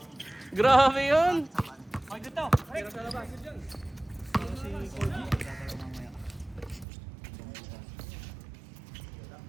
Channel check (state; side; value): drops out; left; at 6.9 s